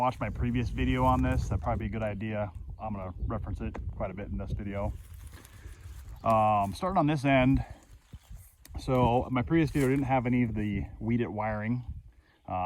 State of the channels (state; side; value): identical; both; correlation 1.00